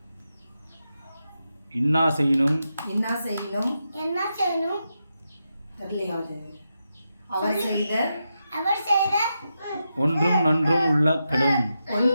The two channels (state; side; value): inverted; both; correlation -0.87